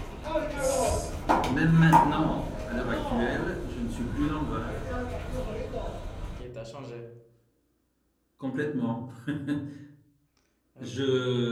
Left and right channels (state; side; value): identical; both; correlation 1.00